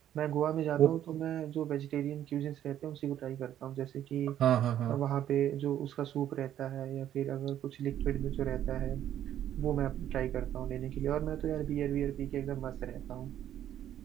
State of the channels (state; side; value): quieter; left; 11.2 dB